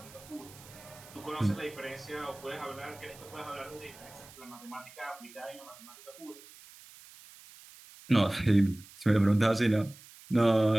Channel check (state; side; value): noise; right; hiss, 20 dB below the sound